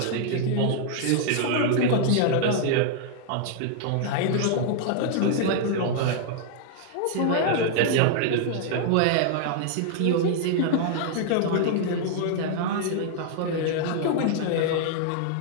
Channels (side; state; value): both; different; correlation -0.01